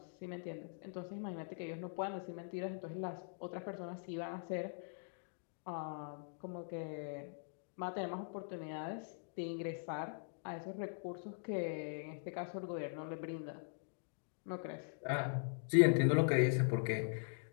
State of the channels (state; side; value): silent; right; digital silence